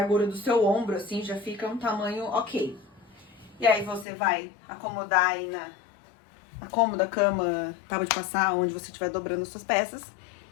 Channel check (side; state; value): right; drops out; at 4.0 s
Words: do seu ombro assim, já fica um tamanho ok. E aí você vai acomodar aí na cômoda, cama, tábua de passar, onde você estiver dobrando as suas peças.